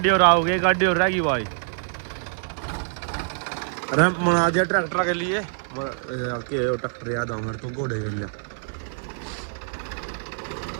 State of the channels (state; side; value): silent; left; 62 dB below the other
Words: और आओगे, गाड़ी और रहेगी भाई। रैंप बना दिया ट्रैक्टर के लिए, ट्रैक्टर याद आऊंगा तो घोड़े के लिए।